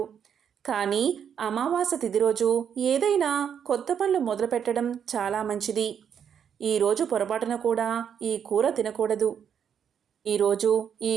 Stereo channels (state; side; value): quieter; left; 8.1 dB